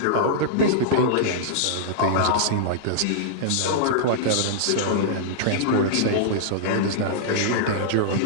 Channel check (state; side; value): different; both; correlation -0.02